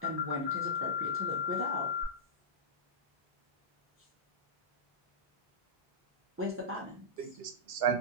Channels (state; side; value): normal; both; correlation -0.16